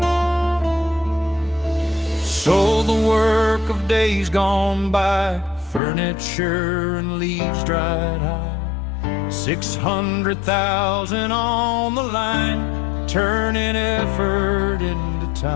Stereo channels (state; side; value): drops out; right; at 5.8 s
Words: So the work of days gone by, furniture and leaves dried high, 600,000 on the line, turning effort into